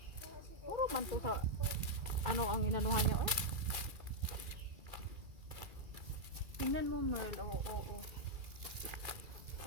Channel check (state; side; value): late; left; 2.3 ms